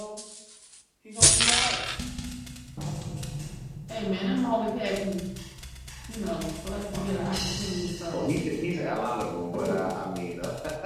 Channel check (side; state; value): both; identical; correlation 1.00